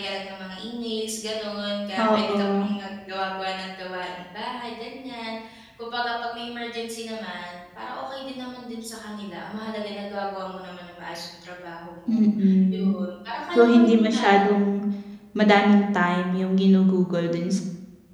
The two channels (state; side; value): identical; both; correlation 1.00